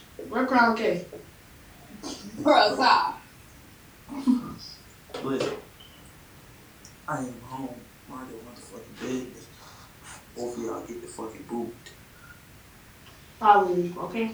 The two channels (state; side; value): identical; both; correlation 1.00